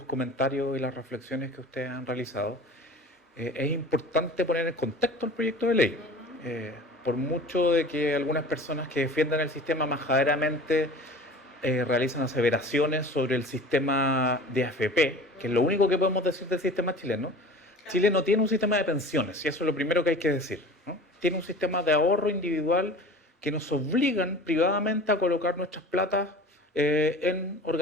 comentarios y las reflexiones que ustedes han realizado, es importante poner en contexto el proyecto de ley. Por mucho de que algunas personas que defiendan el sistema majaderamente realizan aseveraciones sobre el sistema de AFP, que es lo único que podemos decir del sistema chileno. Chile no tiene un sistema de pensiones, y eso es lo primero que hay que decir, ¿no? Tiene un sistema de ahorro individual que nos obligan privadamente a colocar nuestras platas en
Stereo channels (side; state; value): both; normal; correlation 0.40